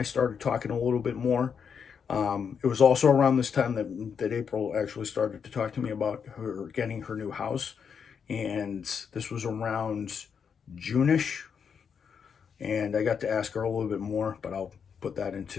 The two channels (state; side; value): quieter; right; 6.8 dB